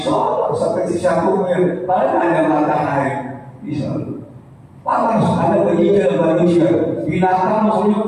seperti 1 mil, paling ada matahari di Solo. Panas, ada begitu manusia. Binatang maksudnya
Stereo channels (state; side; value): identical; both; correlation 1.00